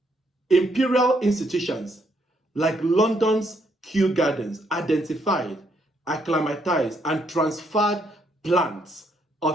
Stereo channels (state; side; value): normal; both; correlation 0.73